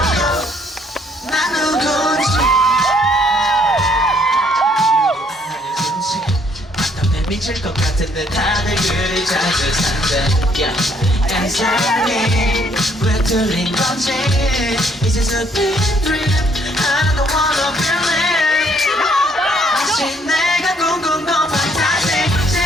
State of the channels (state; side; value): normal; both; correlation 0.66